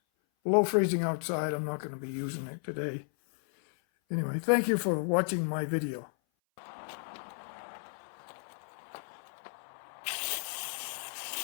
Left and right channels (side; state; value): right; silent; 55 dB below the other